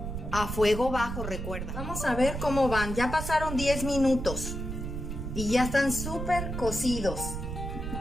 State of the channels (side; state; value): right; noise; rumble, 5 dB below the sound